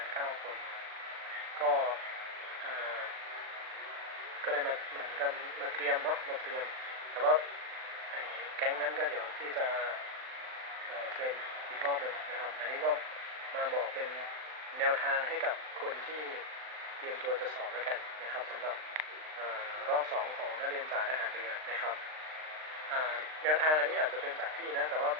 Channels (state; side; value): late; left; 39 ms